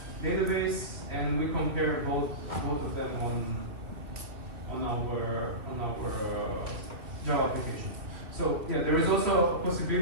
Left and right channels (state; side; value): late; left; 2.2 ms